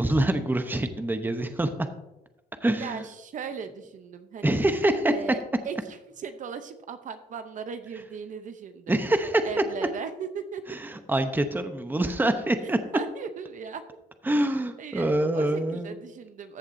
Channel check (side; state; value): both; normal; correlation 0.81